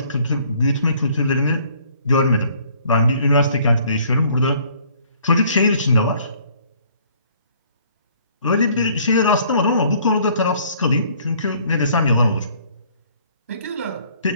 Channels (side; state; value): both; inverted; correlation -0.59